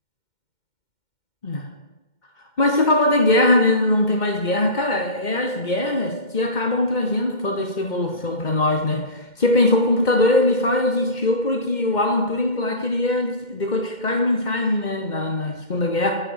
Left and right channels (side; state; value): right; late; 2.1 ms